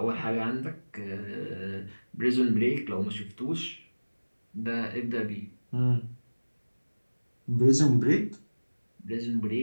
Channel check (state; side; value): inverted; both; correlation -1.00